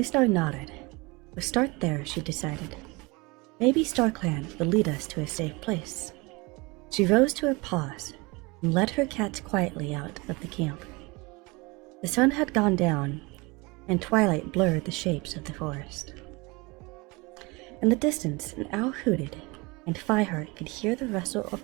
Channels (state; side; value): quieter; left; 25.6 dB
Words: nodded. We'll start there, she decided. Maybe StarClan will lead us to a safe place. She rose to her paws and led her cats quietly out of the camp. The sun had gone down, and twilight blurred the shapes of the forest. In the distance, an owl hooted, and Fireheart could hear the rustle of